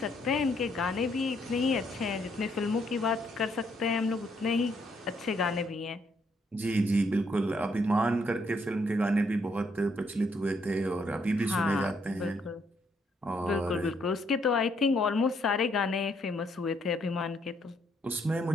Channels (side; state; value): both; normal; correlation 0.72